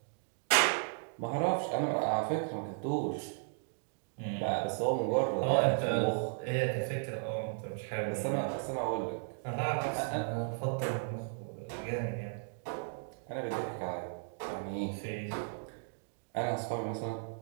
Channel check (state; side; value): silent; left; digital silence